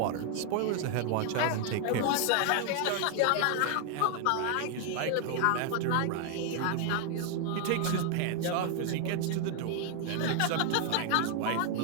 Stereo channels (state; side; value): different; both; correlation 0.00